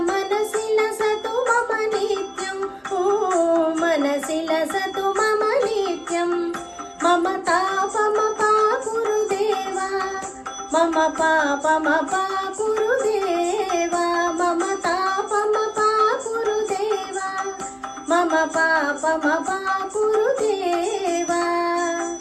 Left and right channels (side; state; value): both; identical; correlation 1.00